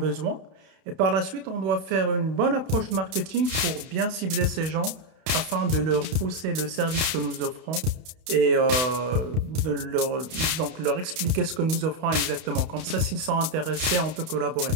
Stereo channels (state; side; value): late; left; 31 ms